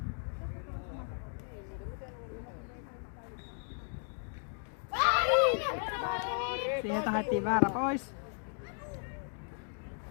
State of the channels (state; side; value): silent; right; 54 dB below the other